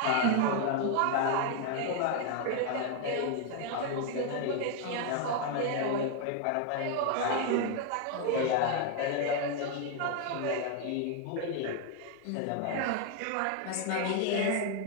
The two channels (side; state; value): both; different; correlation 0.01